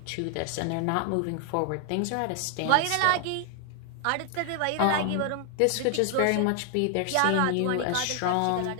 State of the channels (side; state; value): both; different; correlation 0.00